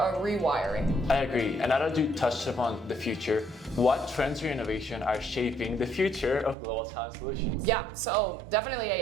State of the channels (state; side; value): drops out; left; at 6.6 s